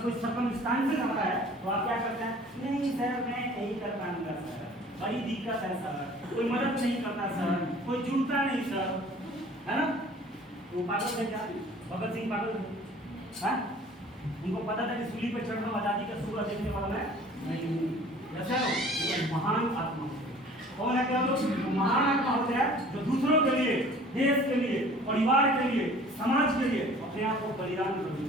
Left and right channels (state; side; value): normal; both; correlation 0.49